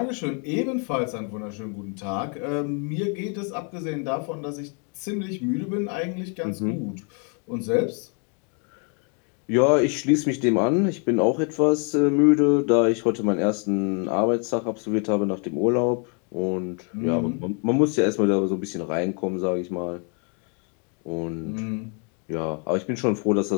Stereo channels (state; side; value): quieter; right; 39.0 dB